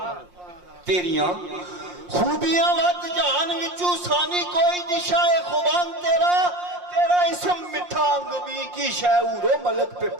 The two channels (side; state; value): left; late; 5.6 ms